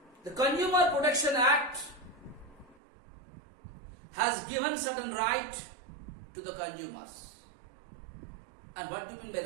the Consumer Protection Act has given certain right to the consumers. And what do you mean by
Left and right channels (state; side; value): drops out; left; at 2.8 s